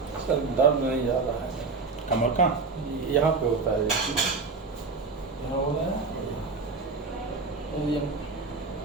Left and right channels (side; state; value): left; quieter; 4.3 dB